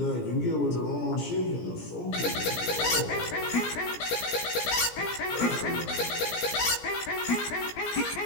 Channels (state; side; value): late; right; 17 ms